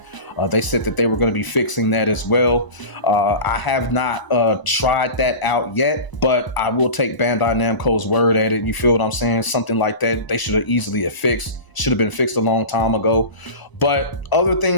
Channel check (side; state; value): right; late; 1.0 ms